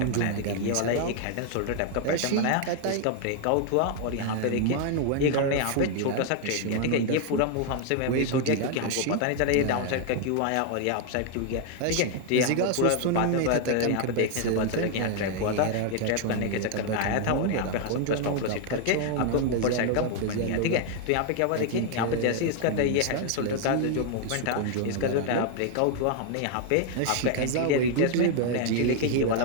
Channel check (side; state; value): both; different; correlation 0.00